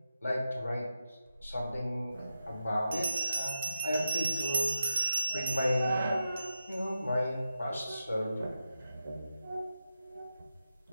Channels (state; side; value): inverted; both; correlation -0.87